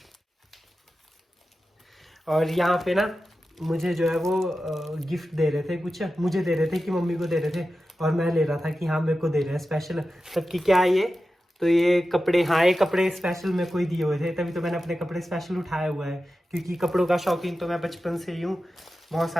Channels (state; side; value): normal; both; correlation 0.93